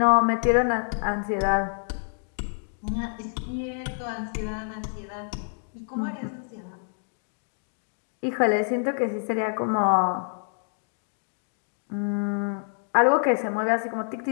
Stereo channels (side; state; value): right; silent; 60 dB below the other